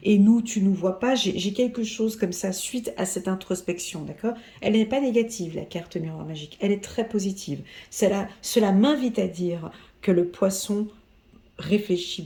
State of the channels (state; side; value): identical; both; correlation 1.00